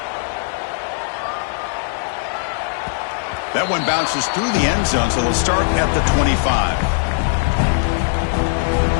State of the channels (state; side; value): silent; right; digital silence